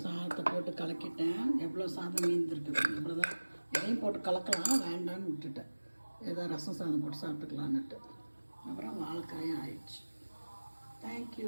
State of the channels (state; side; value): inverted; both; correlation -1.00